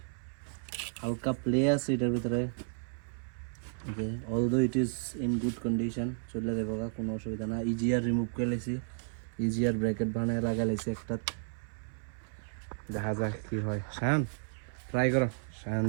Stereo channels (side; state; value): left; silent; 56 dB below the other